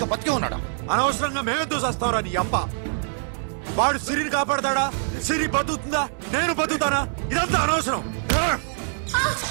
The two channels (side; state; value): left; silent; 62 dB below the other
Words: బతికే ఉన్నాడా అనవసరంగా మేమెందుకు చేస్తావురా నీ అప్ప? వాడు సిరిని కాపాడతాడా? సిరి బతుకుతుందా? నేను బతుకుతానా? ఇదంతా అనవసరం.